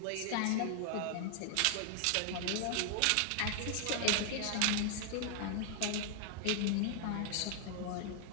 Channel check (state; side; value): different; both; correlation 0.00